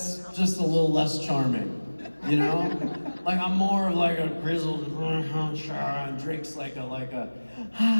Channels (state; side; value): inverted; both; correlation -1.00